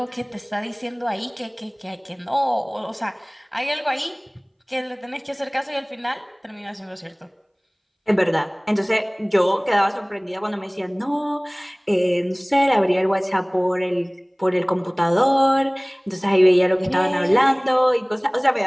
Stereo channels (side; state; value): both; identical; correlation 1.00